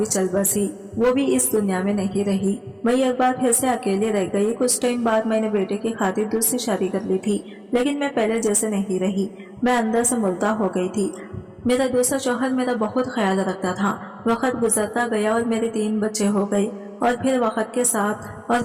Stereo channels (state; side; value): identical; both; correlation 1.00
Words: चल बसी। वो भी इस दुनिया में नहीं रही। मैं एक बार फिर से अकेले रह गई। कुछ टाइम बाद मैंने बेटे की खातिर दूसरी शादी कर ली थी, लेकिन मैं पहले जैसे नहीं रही। मैं अंदर से मुर्दा हो गई थी। मेरा दूसरा शौहर मेरा बहुत ख्याल रखता था। वक्त गुजरता गया और मेरे 3 बच्चे हो गए और फिर वक्त